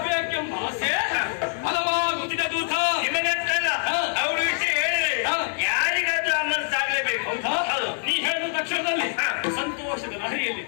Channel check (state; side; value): silent; right; 59 dB below the other